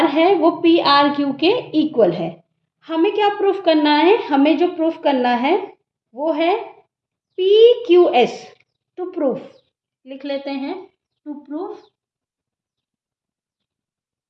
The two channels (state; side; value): identical; both; correlation 1.00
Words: है वो PRQ के इक्वल है। हमें क्या प्रूफ करना है? हमें जो प्रूफ करना है वो है PQS। टू प्रूफ लिख लेते हैं, टू प्रूफ